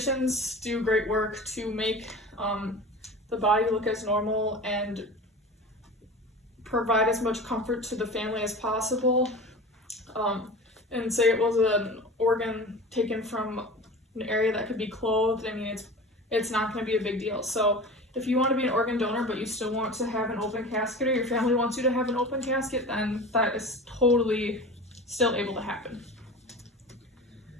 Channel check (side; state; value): both; normal; correlation 0.35